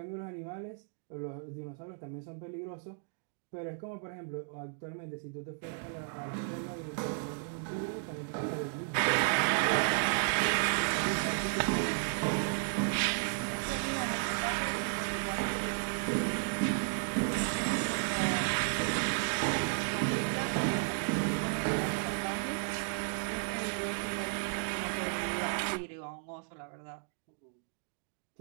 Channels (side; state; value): left; silent; 55 dB below the other